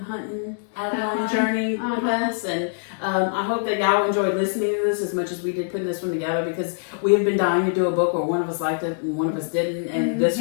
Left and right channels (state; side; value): silent; right; digital silence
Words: Adeline journey with us, and I hope that y'all enjoyed listening to this as much as we did putting this one together, because we have been dying to do a book where one of us liked it and one of us didn't, and this